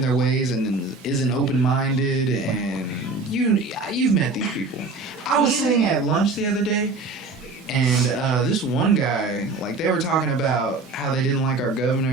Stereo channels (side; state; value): left; quieter; 3.6 dB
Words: their ways and isn't open-minded, and you've met these people. I was sitting at lunch the other day. And this one guy, like, they were talking about how they didn't like our governor,